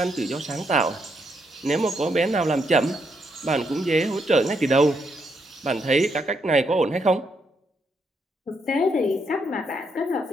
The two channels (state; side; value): normal; both; correlation 0.77